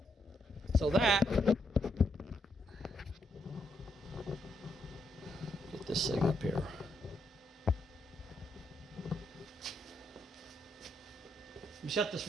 So that, get this thing up here. Let me shut this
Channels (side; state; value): both; normal; correlation 0.78